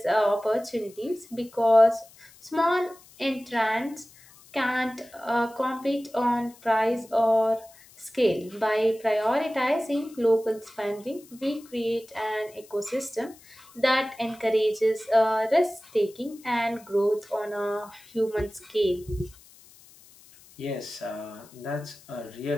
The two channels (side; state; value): left; noise; hiss, 24 dB below the sound